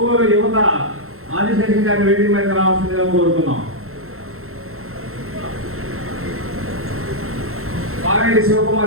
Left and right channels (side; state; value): left; late; 0.62 ms